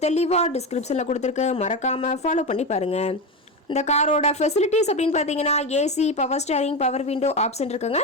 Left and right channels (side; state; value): both; normal; correlation 0.17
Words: தெளிவாக டிஸ்கிரிப்ஷனில் கொடுத்துருக்கு. மறக்காமல் ஃபாலோ பண்ணி பாருங்கள். இந்த காரோட ஃபெசிலிட்டிஸ் அப்படின்னு பார்த்தீங்கன்னா AC, power steering, power window option இருக்குங்க.